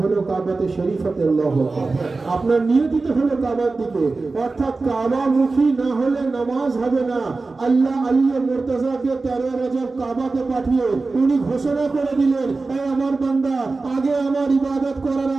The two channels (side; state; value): left; quieter; 3.7 dB